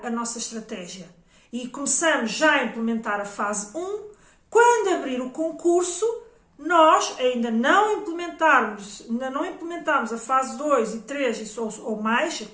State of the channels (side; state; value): both; identical; correlation 1.00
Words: a nossa estratégia e começamos já a implementar a fase 1. Quando abrir o concurso, nós ainda não implementarmos a fase 2 e 3 ou mais,